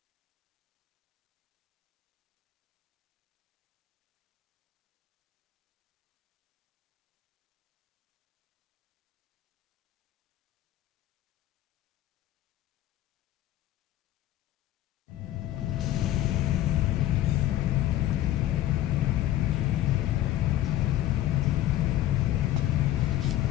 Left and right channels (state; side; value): quieter; right; 13.5 dB